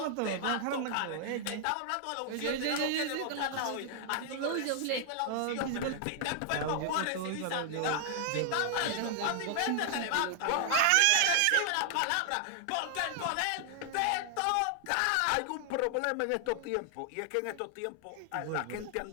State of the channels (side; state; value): both; different; correlation 0.00